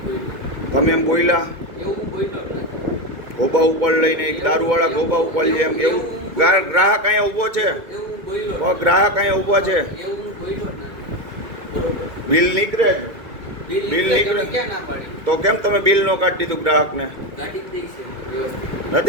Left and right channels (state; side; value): late; left; 2.1 ms